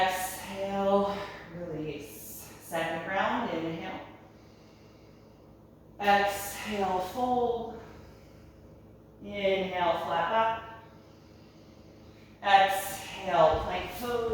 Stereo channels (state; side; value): identical; both; correlation 1.00